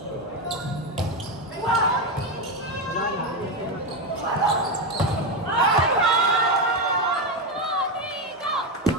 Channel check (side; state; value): both; normal; correlation 0.10